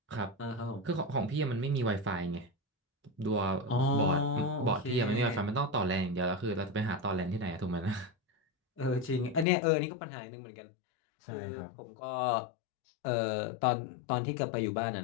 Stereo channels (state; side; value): drops out; right; at 9.5 s